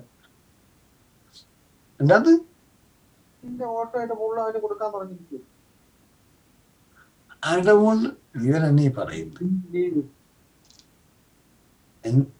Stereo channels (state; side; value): identical; both; correlation 1.00